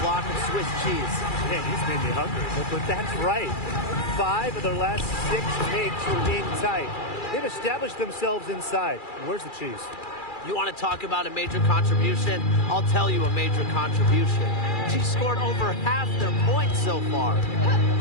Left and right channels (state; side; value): late; right; 2.4 ms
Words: block of Swiss cheese. Man, he's made me hungry. But that's right. 5 of their last 6 makes were in tight. They've established themselves inside. Where's the cheese? You want to talk about a major contribution? I'll tell you a major contribution. She scored over half their points so far.